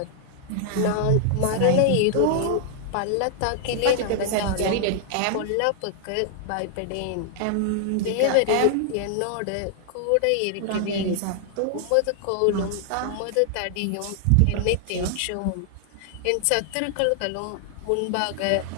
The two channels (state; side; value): different; both; correlation 0.00